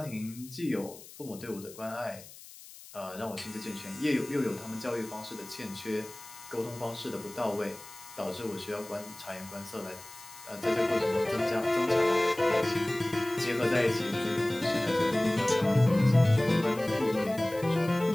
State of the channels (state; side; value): noise; left; hiss, 18 dB below the sound